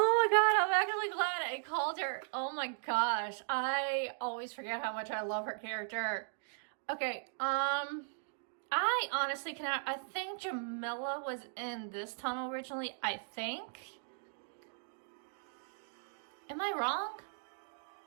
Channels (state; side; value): silent; left; digital silence